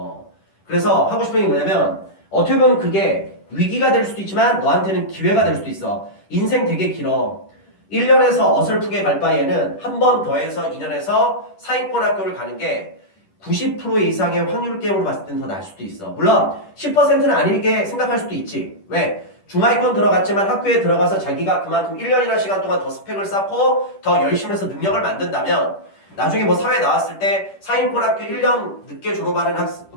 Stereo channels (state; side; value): late; right; 10 ms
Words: 그래서 하고 싶은 게 뭐냐면 어떻게 보면 그게 위기가 될 수도 있지만 너한테는 기회가 될 수도 있어. 인생 되게 길어. 1년에서 어설프게 갈 바에는 한 번 더해서 2년에서 사익권 학교를 가는 게 90% 이상의 확률 게임으로 봤을 때는 더 나을 수도 있어. 물론 10%는 아니게 생각할 수도 있지. 왜? 중하위권 들어갔지만 학교에 들어가서 자기가 그만큼 1년이라는 시간 동안 더 스펙을 쌓고 더 열심히 해서 능력을 만든다면 나중에 뭐 사회 나왔을 때 사인권 학교 1년 늦게 졸업하는